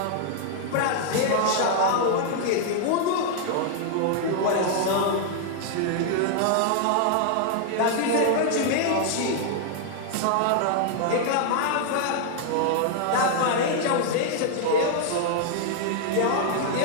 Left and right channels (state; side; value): different; both; correlation 0.00